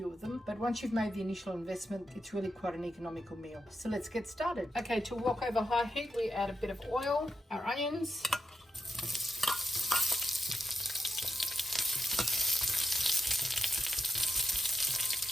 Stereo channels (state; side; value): normal; both; correlation 0.85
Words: of them, but once you've made the initial investment, it's really quite an economical meal. So let's get started. Okay, to wok over high heat, we add a bit of oil, our onions,